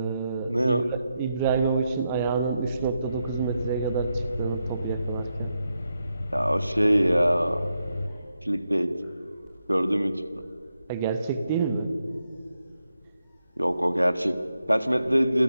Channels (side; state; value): both; inverted; correlation -0.85